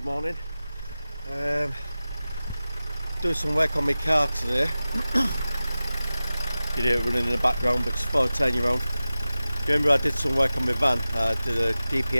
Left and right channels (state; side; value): inverted; both; correlation -0.96